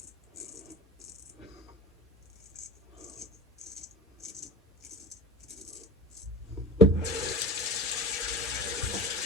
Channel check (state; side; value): normal; both; correlation 0.32